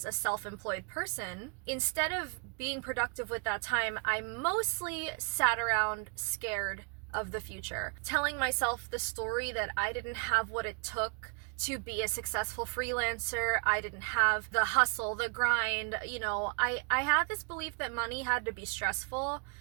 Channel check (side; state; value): left; quieter; 35.7 dB